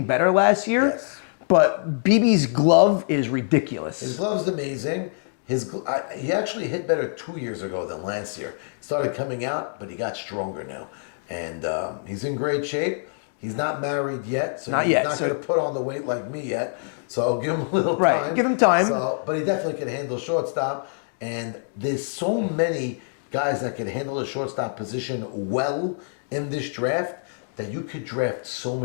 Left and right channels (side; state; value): right; silent; digital silence